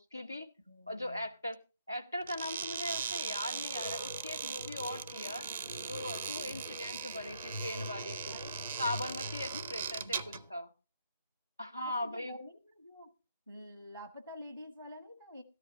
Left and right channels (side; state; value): both; inverted; correlation -0.71